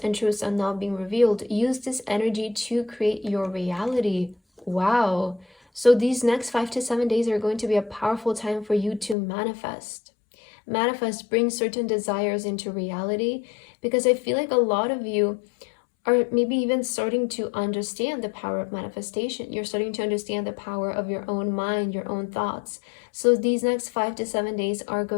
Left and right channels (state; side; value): drops out; right; at 9.2 s